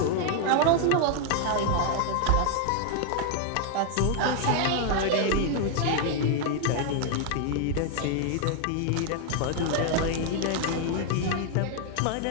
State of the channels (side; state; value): both; different; correlation 0.00